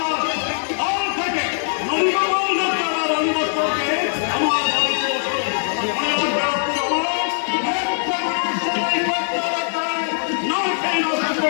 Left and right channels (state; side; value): silent; right; 60 dB below the other